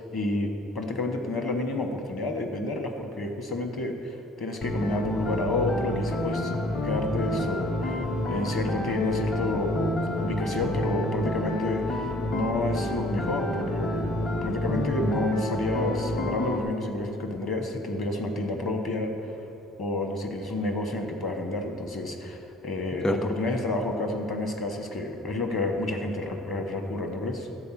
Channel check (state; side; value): normal; both; correlation 0.53